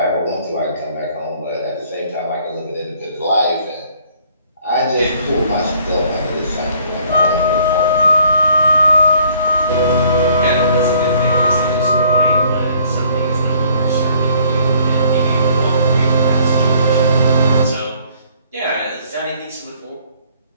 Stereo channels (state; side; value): inverted; both; correlation -0.60